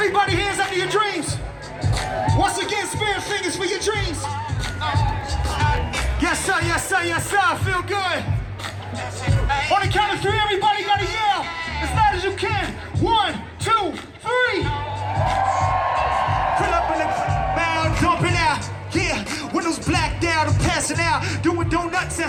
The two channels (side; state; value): both; identical; correlation 1.00